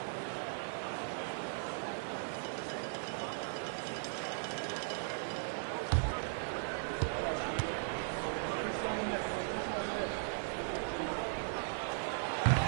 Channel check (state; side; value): silent; left; 52 dB below the other